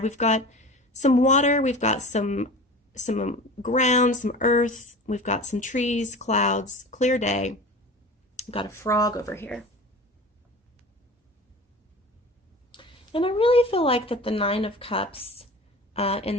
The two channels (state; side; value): normal; both; correlation 0.36